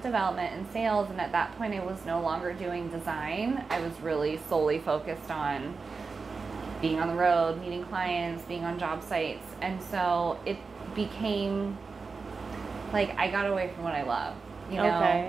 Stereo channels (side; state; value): left; quieter; 4.6 dB